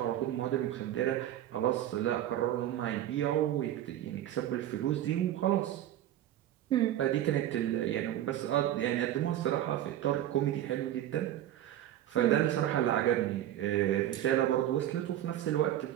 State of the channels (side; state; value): left; quieter; 12.3 dB